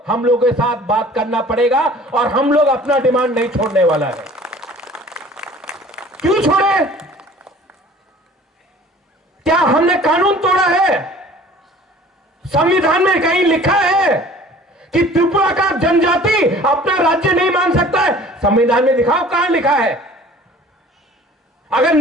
हम लोगों के साथ बात करना पड़ेगा और हम लोग अपना डिमांड नहीं छोड़ने वाला है। क्यों छोड़े? क्या हमने कानून तोड़ा है? संविधान में कहीं लिखा है कि त्रिपुरा का जनजाति अपना राज्य नहीं मान सकता है? संविधान में दिखाओ कहां लिखा है। अगर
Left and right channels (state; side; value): normal; both; correlation 0.48